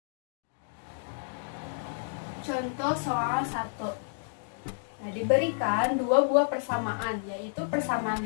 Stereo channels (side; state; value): right; silent; digital silence